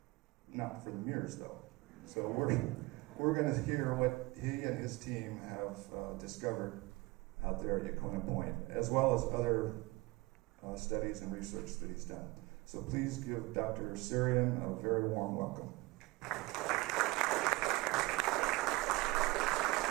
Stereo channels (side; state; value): left; quieter; 22.4 dB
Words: Not for the Murres, though. So we're going to hear what he and his team have discovered out there at Yaquina Point, as well as other studies and research that he's done. So please give Dr. Suryan a very warm welcome.